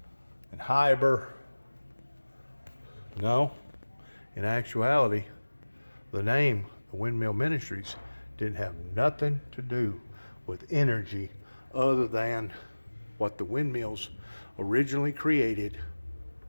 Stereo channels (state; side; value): inverted; both; correlation -1.00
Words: and hybrid. No, in actuality, the name, the Windmill Ministries, didn't have nothing to do with energy other than what the windmills originally created